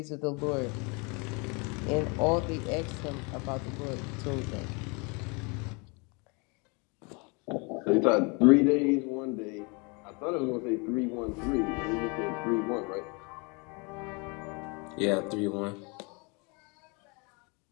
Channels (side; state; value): right; quieter; 31.2 dB